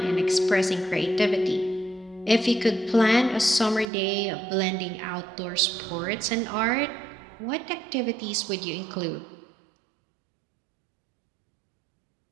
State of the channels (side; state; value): left; drops out; at 3.9 s